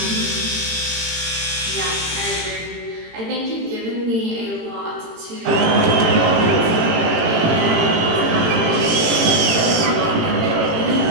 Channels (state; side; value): late; left; 18 ms